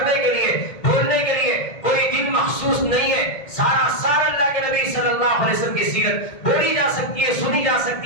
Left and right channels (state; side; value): late; right; 2.1 ms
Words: کے لیے، بولنے کے لیے کوئی دن مخصوص نہیں ہے۔ سارا سال اللہ کے نبی صلی اللہ علیہ وسلم کی سیرت بولی جا سکتی ہے، سنی جا